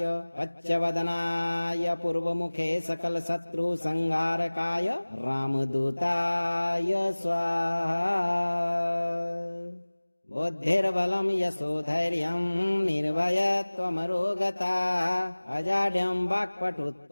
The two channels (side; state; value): both; inverted; correlation -1.00